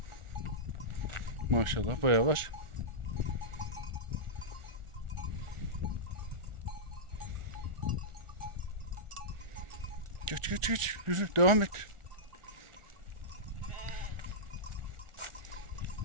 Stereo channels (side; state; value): left; late; 1.4 ms